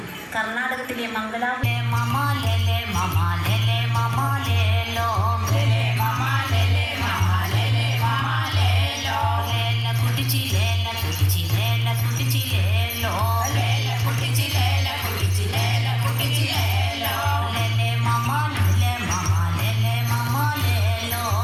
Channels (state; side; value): identical; both; correlation 1.00